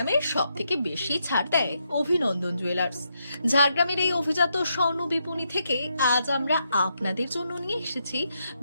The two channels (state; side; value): inverted; both; correlation -0.81